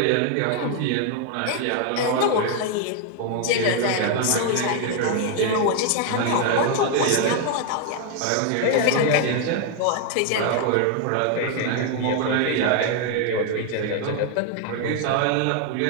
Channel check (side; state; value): both; different; correlation 0.00